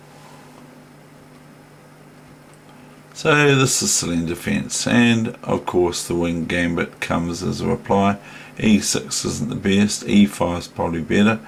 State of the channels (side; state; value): both; identical; correlation 1.00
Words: So this is Celine defence, and of course the wing gambit comes as a reply. E6 isn't the best, E5 is probably better.